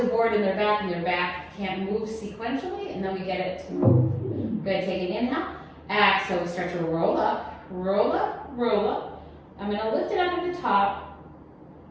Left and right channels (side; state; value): both; identical; correlation 1.00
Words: a board in their back, and their back can't move sequentially, and then we get it to move. Good, take an inhale. Exhale, we start to roll up, roll up, roll up. I'm gonna lift it up at the top.